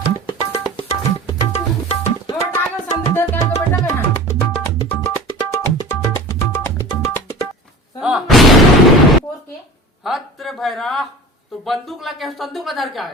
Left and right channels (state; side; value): normal; both; correlation 0.38